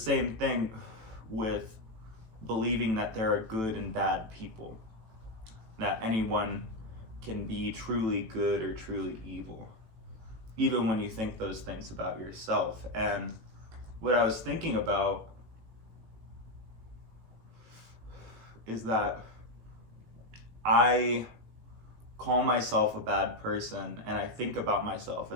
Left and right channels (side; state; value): left; late; 18 ms